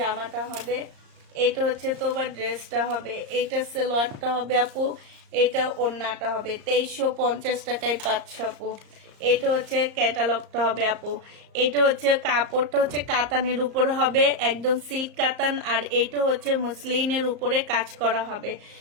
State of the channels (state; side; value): late; left; 34 ms